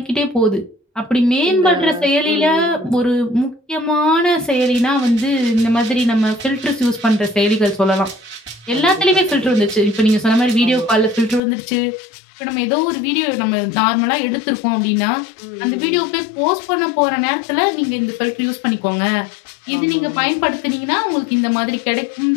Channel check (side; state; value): right; drops out; at 11.4 s